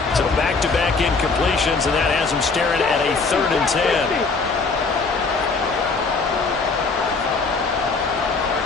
So back-to-back incompletions, and that has him staring at a 3rd and 10.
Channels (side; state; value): right; quieter; 4.3 dB